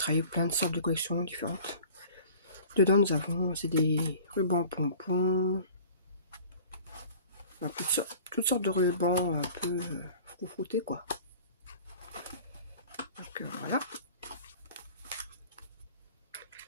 plein de sortes de collections différentes. Dedans, nous avons, c'est des rubans pompons, toutes sortes de rubans un peu froufroutés, quoi. Donc, voilà.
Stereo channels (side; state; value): both; inverted; correlation -0.45